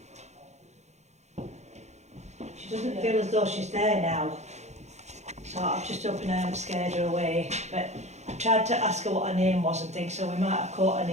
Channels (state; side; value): late; left; 0.33 ms